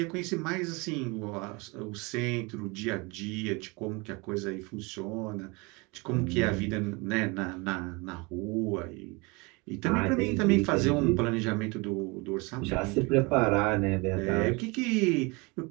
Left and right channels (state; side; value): quieter; left; 27.3 dB